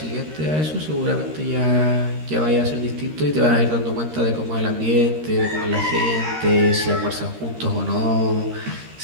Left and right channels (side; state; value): left; late; 13 ms